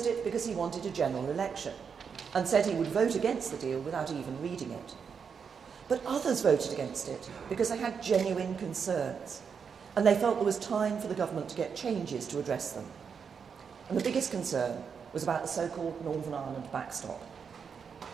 it because he wanted a general election and said he would vote against the deal without even reading it. But others voted against it because they had genuine concerns and they felt there was time for the government to get changes to address them. And the biggest concern was about the so-called Northern Ireland backstop.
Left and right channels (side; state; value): left; quieter; 6.4 dB